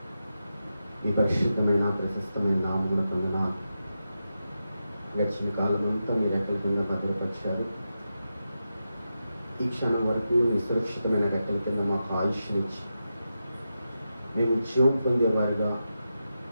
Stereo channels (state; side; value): inverted; both; correlation -0.89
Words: ఈ పరిశుద్ధమైన ప్రశస్తమైన నామమున పొందినాను. గడిచిన కాలం అంతా మీరు రెక్కల కింద భద్రపరిచారు. ఈ క్షణం వరకు మీ సురక్షితమైన రెక్కల కింద మాకు ఆయుష్నిచ్చి మేము జీవం పొందేవారిగా